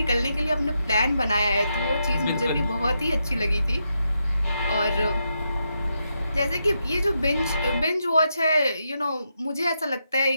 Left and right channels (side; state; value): both; inverted; correlation -0.83